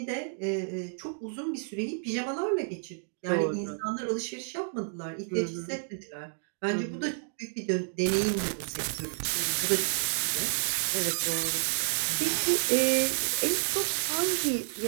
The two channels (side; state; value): left; silent; digital silence